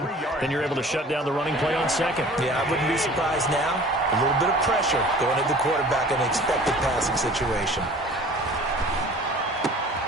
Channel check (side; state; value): both; normal; correlation 0.46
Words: then you're able to shut down the running play on 2nd. Yeah, I wouldn't be surprised now. A little bit of pressure going at the quarterback in an expected passing situation.